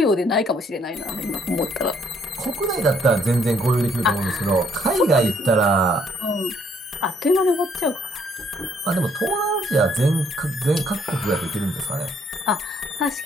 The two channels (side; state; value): both; normal; correlation 0.67